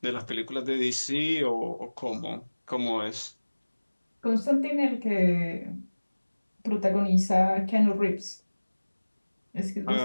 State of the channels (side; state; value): both; inverted; correlation -1.00